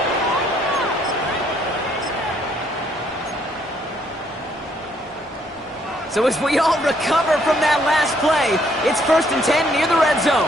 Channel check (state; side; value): normal; both; correlation 0.68